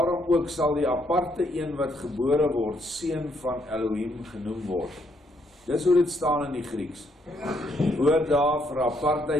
ook sal die aparte een wat gebore word, seun van Elohim genoem word. Dis hoe dit staan in die Grieks. Die woord daar vir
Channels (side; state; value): both; normal; correlation 0.72